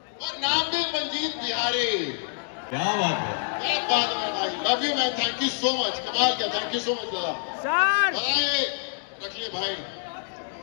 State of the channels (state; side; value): silent; right; digital silence